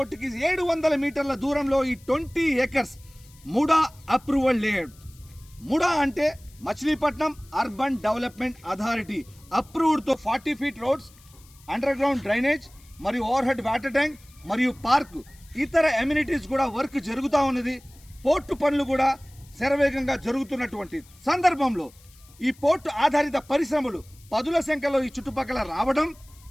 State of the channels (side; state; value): left; noise; hiss, 26 dB below the sound